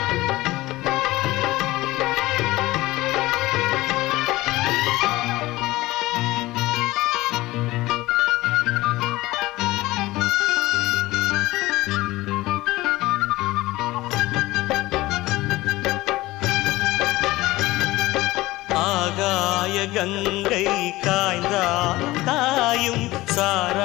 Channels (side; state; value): right; quieter; 18.7 dB